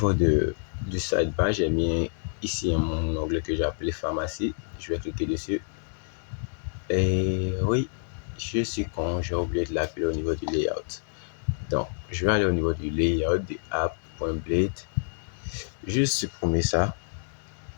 du sidebar, j'ai mis ici mon onglet que j'ai appelé pharmacie. Je vais cliquer dessus. Et oui, je suis con, j'ai oublié de l'appeler au niveau du layout. Donc, je vais aller au niveau du layout de app.blade. Juste supprimer ça.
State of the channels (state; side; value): silent; right; digital silence